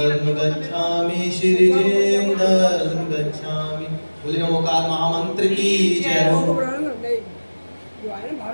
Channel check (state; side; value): inverted; both; correlation -1.00